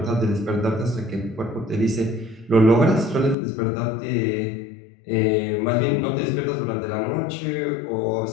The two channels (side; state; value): right; drops out; at 3.4 s